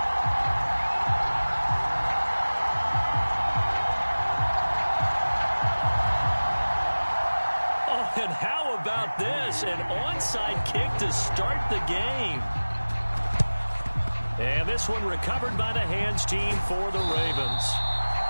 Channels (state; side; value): inverted; both; correlation -1.00